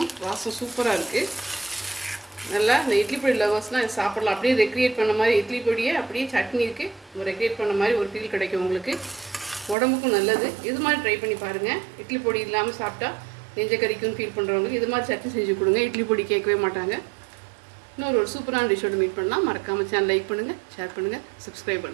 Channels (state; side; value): drops out; left; at 9.8 s